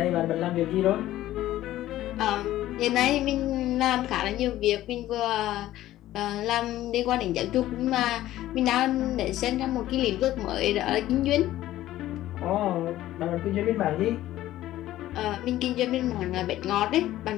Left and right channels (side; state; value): right; quieter; 14.4 dB